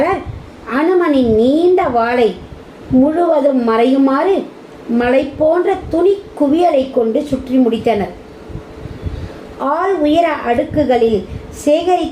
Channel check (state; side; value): identical; both; correlation 1.00